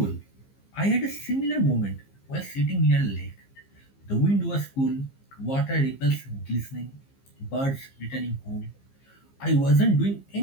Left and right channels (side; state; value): right; late; 15 ms